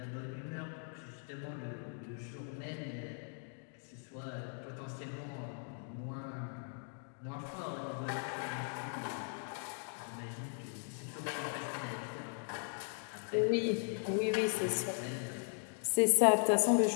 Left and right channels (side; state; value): right; silent; 52 dB below the other